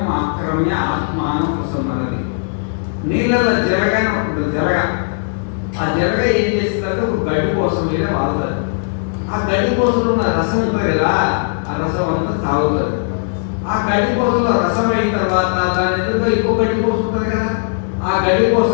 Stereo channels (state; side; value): silent; right; 68 dB below the other